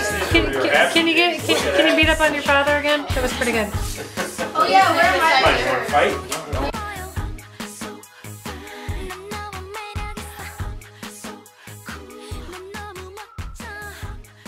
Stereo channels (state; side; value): identical; both; correlation 1.00